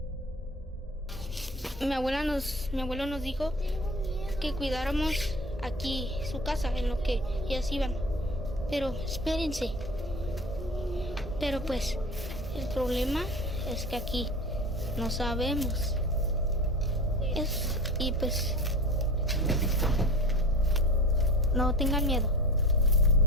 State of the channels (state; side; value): normal; both; correlation 0.36